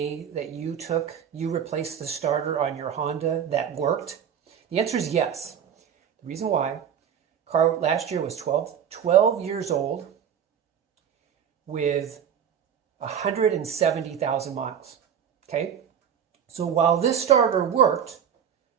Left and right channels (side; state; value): left; quieter; 8.4 dB